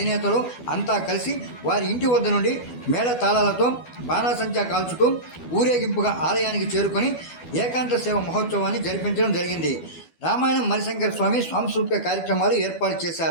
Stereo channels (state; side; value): late; right; 12 ms